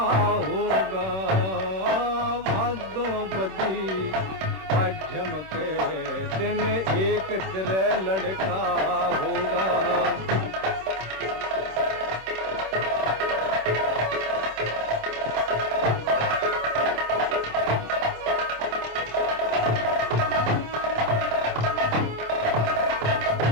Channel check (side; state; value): left; late; 26 ms